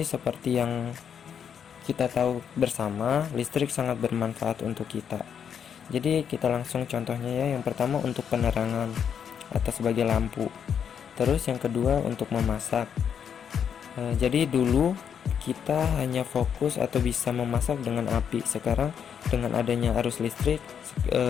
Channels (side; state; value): right; quieter; 7.8 dB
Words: seperti yang kita tahu bersama, listrik sangat bermanfaat untuk kita. Jadi kita langsung contohnya ya. Yang pertama untuk penerangan atau sebagai lampu. Terus yang kedua untuk memasak. Jadi dulu kita hanya fokus atau bisa memasak dengan api. Sekarang dengan adanya arus listrik,